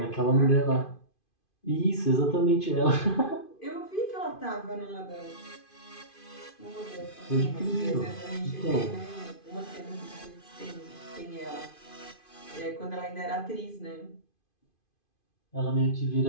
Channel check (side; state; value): right; late; 2.5 ms